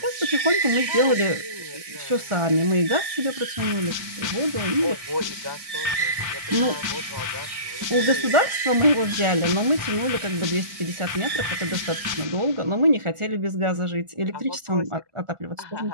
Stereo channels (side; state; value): left; late; 1.4 ms